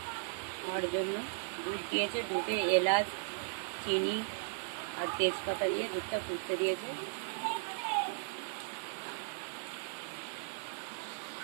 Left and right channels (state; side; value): silent; left; digital silence